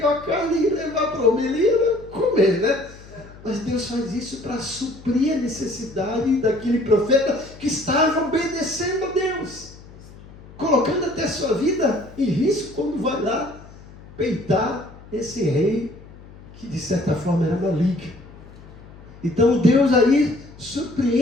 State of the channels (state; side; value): noise; left; hum, 20 dB below the sound